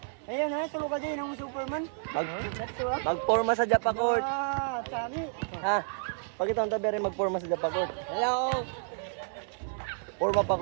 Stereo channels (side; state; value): left; silent; 57 dB below the other